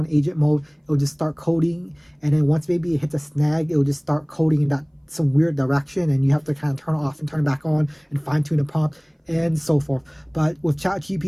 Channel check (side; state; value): both; identical; correlation 1.00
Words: agent mode, it'll just start coding, and then once maybe it hits a snag, it'll just start coding in that some weird direction, and you have to kind of turn it off and turn it back on and fine tune the prompt and so forth. But with